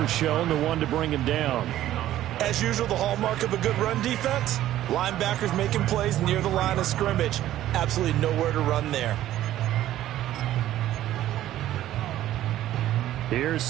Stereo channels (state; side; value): quieter; left; 13.3 dB